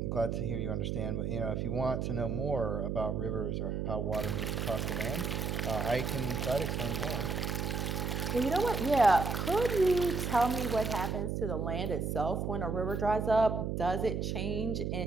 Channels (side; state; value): right; noise; hum, 1 dB below the sound